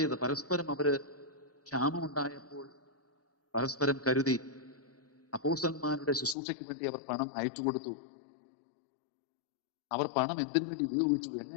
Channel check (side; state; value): right; drops out; at 6.4 s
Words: പരസ്പരം അവര് ക്ഷാമമുണ്ടായപ്പോൾ പരസ്പരം കരുതി. അപ്പോസ്തലന്മാരുടെ ശുശ്രൂഷയ്ക്ക് വേണ്ടി അവർ പണം അയച്ചു കൊടുത്തു. അവർ പണം എന്തിനു വേണ്ടി ഉപയോഗിച്ചു,